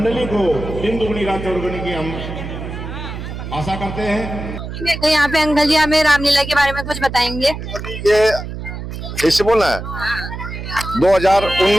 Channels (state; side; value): noise; right; hum, 8 dB below the sound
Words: को दिन दुगनी रात चौगुनी की हम आशा करते हैं। तो यहाँ पे अंकल जी हमें रामलीला के बारे में कुछ बताएंगे। ये ऐसे बोलना है